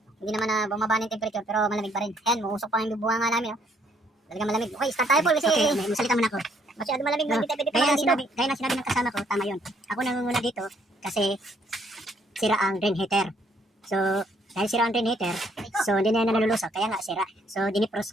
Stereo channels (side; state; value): both; normal; correlation 0.67